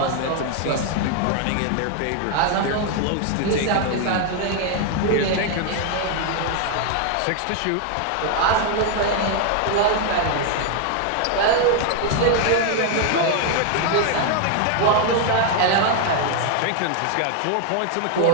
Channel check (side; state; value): both; different; correlation 0.00